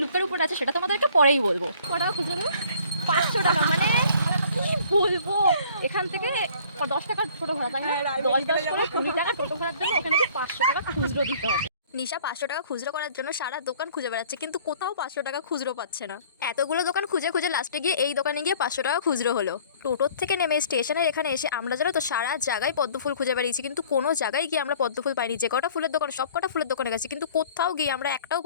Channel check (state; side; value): inverted; both; correlation -0.54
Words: লুকের উপর আছে সেটা তোমাদেরকে পরেই বলবো। কটা খুচরো 500 টাকা, মানে কি বলবো। এখান থেকে 10 টাকা টোটো ভাড়া, তাই না? 10 করে 20 টাকা টোটো ভাড়ার জন্য ওখানে 500 টাকা খুচরো দিতে হবে। নিশা 500 টাকা খুচরো করার জন্য সারা দোকান খুঁজে বেড়াচ্ছে, কিন্তু কোথাও 500 টাকা খুচরো পাচ্ছে না। এতগুলো দোকান খুঁজে লাস্টে গিয়ে এই দোকানে গিয়ে 500 টাকা খুচরো হলো। টোটোর থেকে নেমে স্টেশনের এখানে এসে আমরা জানো তো সারা জায়গায় পদ্ম ফুল খুঁজে বেরিয়েছি, কিন্তু কোনো জায়গায় গিয়ে আমরা পদ্ম ফুল পাইনি। যে কটা ফুলের দোকান সব কটা ফুলের দোকানে গেছি, কিন্তু কোথাও গিয়ে আমরা একটাও